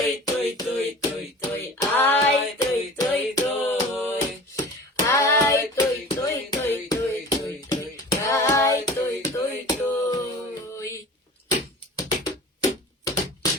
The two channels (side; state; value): both; normal; correlation 0.39